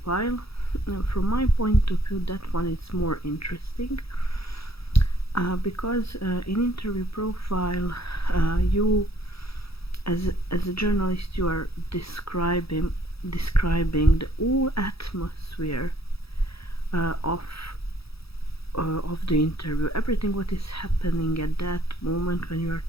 from my point of view, that one is more interesting because in interview profile, you as a journalist, you are describing the whole atmosphere of the interview, everything what is happening at that moment when you are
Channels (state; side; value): late; right; 0.77 ms